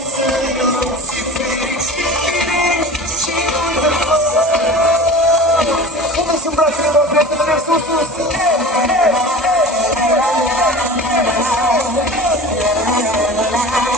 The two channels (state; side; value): normal; both; correlation 0.36